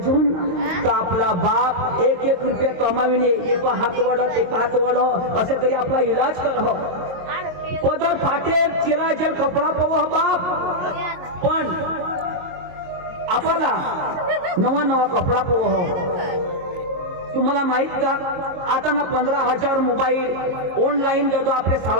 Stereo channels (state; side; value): late; left; 22 ms